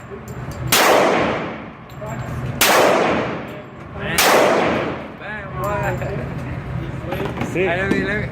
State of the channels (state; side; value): identical; both; correlation 1.00